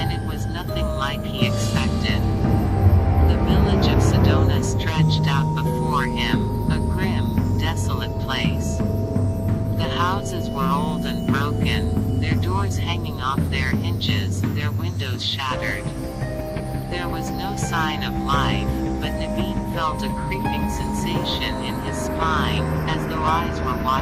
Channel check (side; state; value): both; identical; correlation 1.00